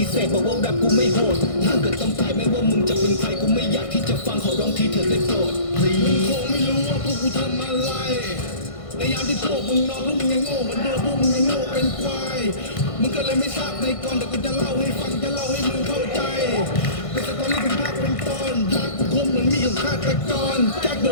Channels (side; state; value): right; late; 1.5 ms